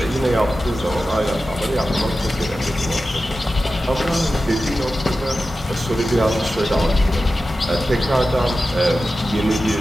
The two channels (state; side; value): normal; both; correlation 0.93